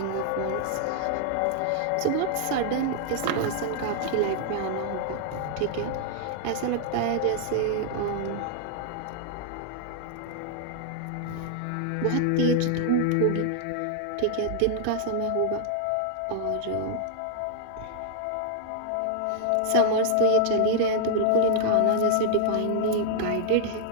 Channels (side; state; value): both; different; correlation -0.01